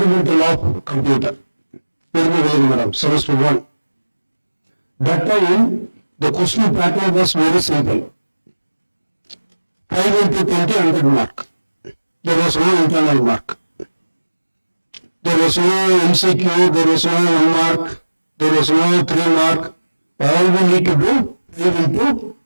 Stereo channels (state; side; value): inverted; both; correlation -1.00